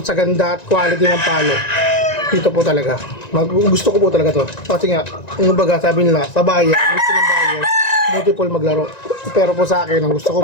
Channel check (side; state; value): right; late; 1.9 ms